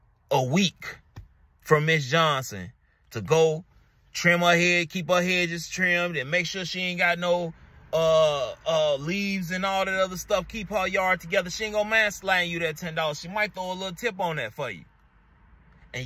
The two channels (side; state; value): both; identical; correlation 1.00